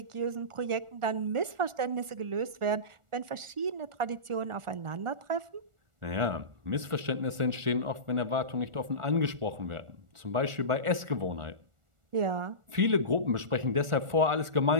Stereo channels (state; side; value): late; left; 1.4 ms